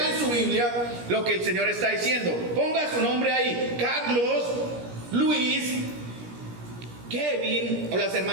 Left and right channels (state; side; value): late; left; 17 ms